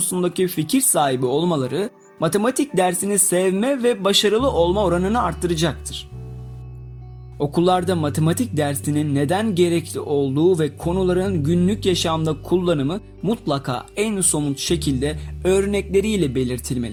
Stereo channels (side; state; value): both; identical; correlation 1.00